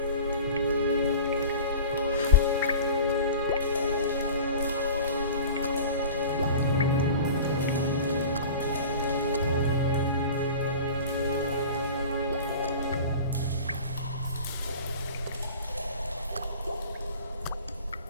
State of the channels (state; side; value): inverted; both; correlation -0.38